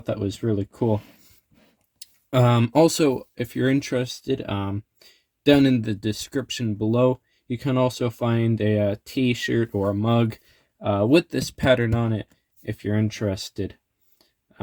that was really cool. Also, if you're interested, down in the description below, you can also find a t-shirt or a mug with this pattern on it if you're interested.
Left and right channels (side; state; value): both; identical; correlation 1.00